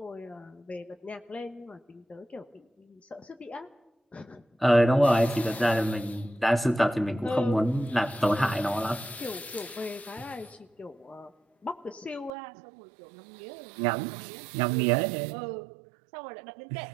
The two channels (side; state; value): left; drops out; at 12.3 s